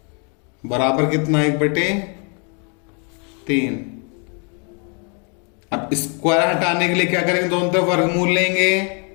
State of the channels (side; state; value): right; quieter; 37.4 dB